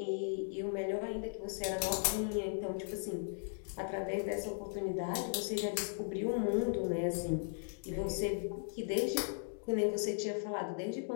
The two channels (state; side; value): silent; right; digital silence